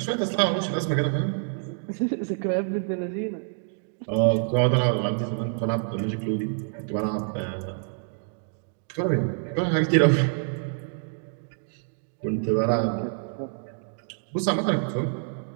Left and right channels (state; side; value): silent; left; 60 dB below the other